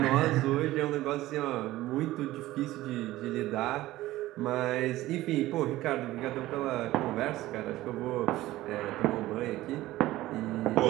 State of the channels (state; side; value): quieter; left; 16.5 dB